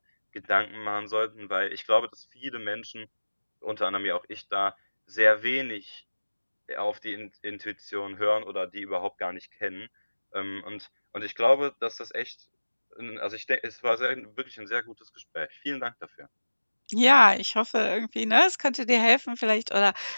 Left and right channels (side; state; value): both; inverted; correlation -1.00